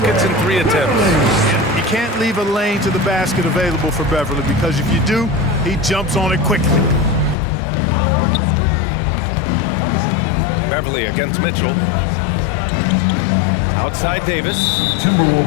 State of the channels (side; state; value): right; drops out; at 7.4 s